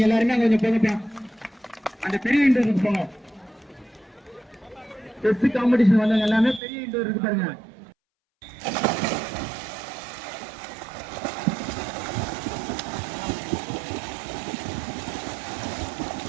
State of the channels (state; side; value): drops out; left; at 6.6 s